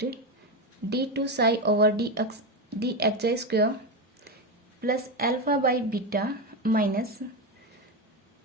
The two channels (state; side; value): normal; both; correlation 0.13